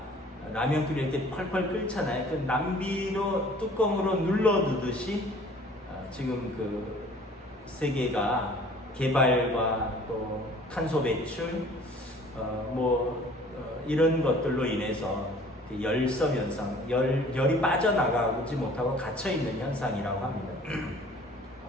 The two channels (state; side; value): normal; both; correlation 0.51